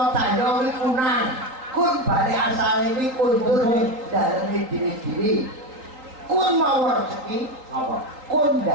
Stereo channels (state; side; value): late; left; 3.8 ms